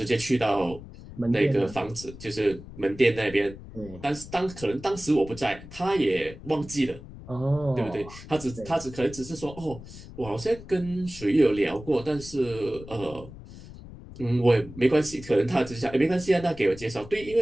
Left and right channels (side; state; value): left; noise; rumble, 15 dB below the sound